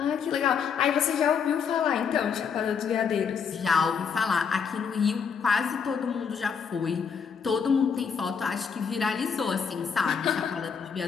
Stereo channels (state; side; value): quieter; right; 6.4 dB